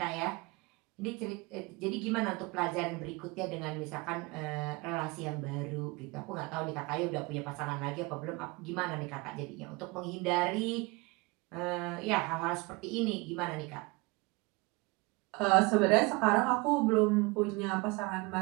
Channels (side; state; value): left; quieter; 25.6 dB